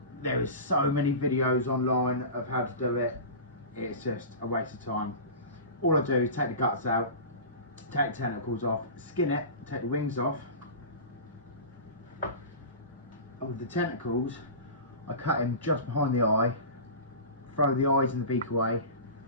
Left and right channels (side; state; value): both; inverted; correlation -0.31